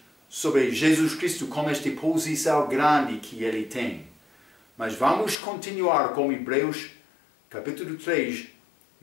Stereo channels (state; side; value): drops out; right; at 5.4 s